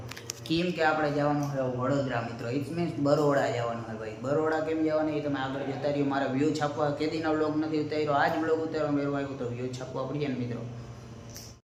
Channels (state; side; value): identical; both; correlation 1.00